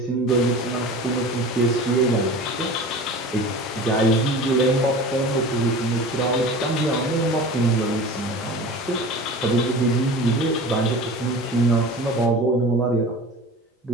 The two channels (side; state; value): both; normal; correlation 0.37